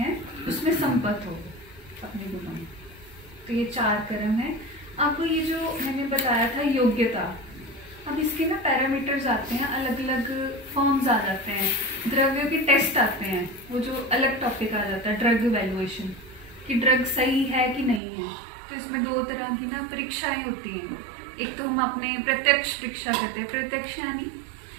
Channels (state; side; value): drops out; left; at 18.0 s